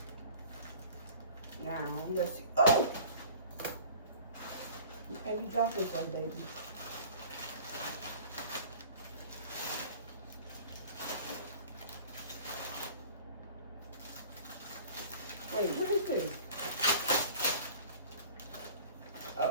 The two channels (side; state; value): both; inverted; correlation -0.45